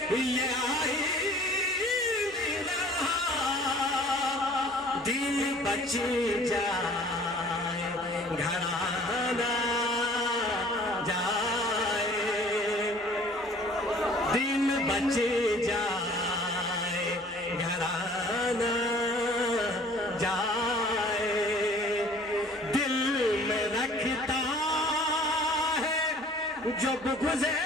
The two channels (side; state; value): both; normal; correlation 0.51